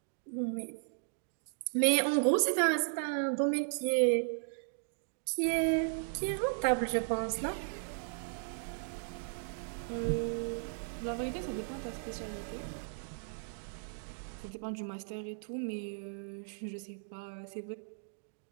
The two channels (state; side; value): silent; left; digital silence